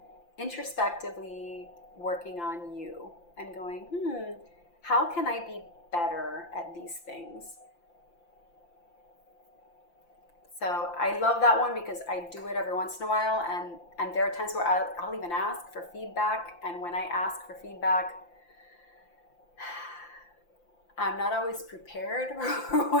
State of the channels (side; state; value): right; late; 5.8 ms